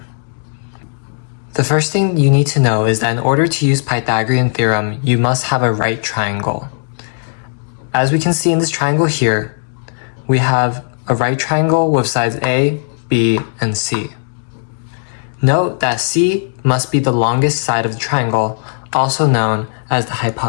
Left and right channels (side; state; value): right; silent; digital silence